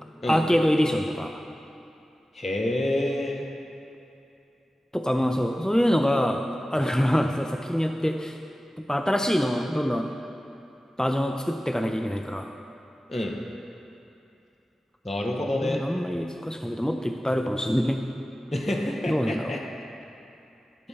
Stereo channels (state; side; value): normal; both; correlation 0.95